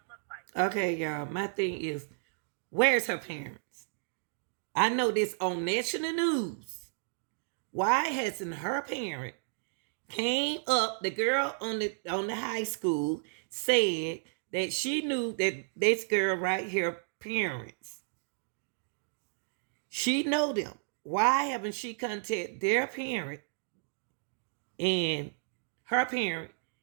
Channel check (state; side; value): silent; left; digital silence